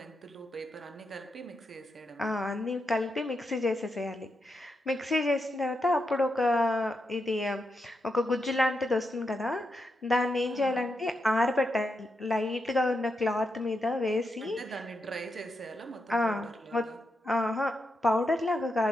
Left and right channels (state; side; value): normal; both; correlation 0.84